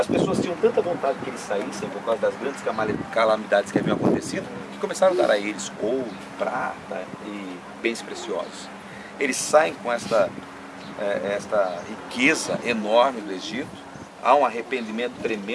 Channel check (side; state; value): both; identical; correlation 1.00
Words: pessoas tinham tanta vontade que eles saíssem por causa das grandes calamidades que haviam acontecido, que começaram a dar a eles ouro, prata e bens preciosos. Eles saem com esta riqueza enorme do Egito. Há um arrependimento